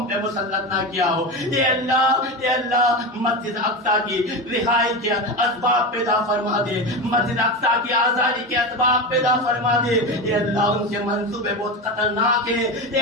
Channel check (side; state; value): both; normal; correlation 0.21